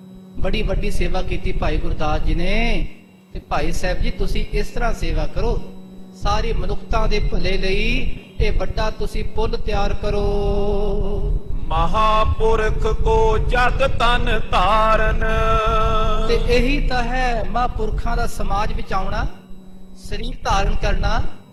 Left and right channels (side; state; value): both; identical; correlation 1.00